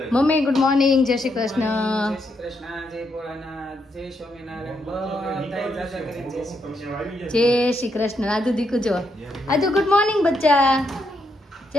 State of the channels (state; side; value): normal; both; correlation 0.79